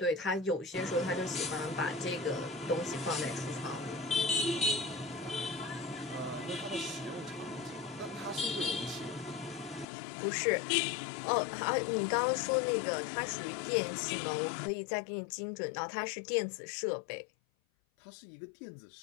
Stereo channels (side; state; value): right; drops out; at 9.9 s